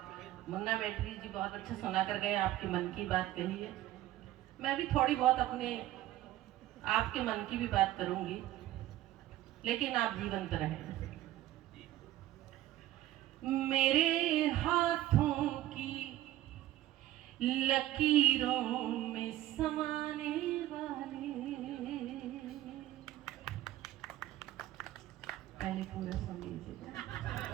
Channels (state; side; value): quieter; left; 14.3 dB